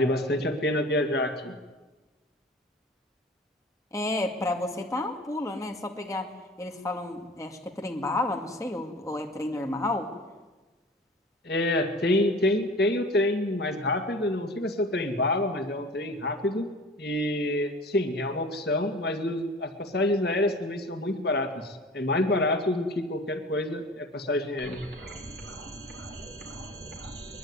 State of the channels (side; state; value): both; normal; correlation 0.41